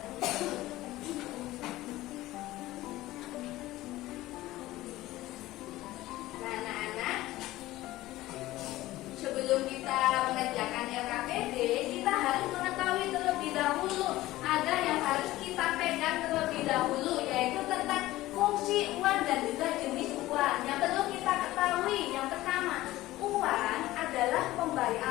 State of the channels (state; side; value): quieter; right; 16.8 dB